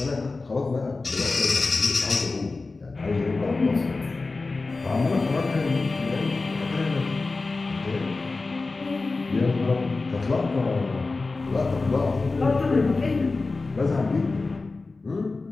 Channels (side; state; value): right; quieter; 3.7 dB